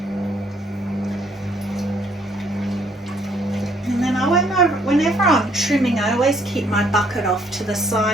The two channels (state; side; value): normal; both; correlation 0.66